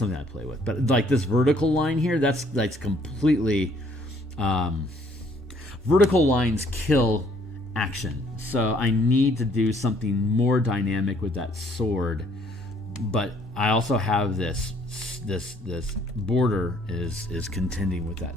I play with. But like this vertical line here, that's completely, vertical lines kill action. So I need to do something more dynamic with that sword. But I also have this border is contending with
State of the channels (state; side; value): normal; both; correlation 0.63